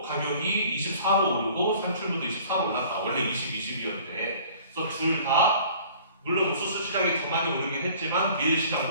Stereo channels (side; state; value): both; inverted; correlation -0.50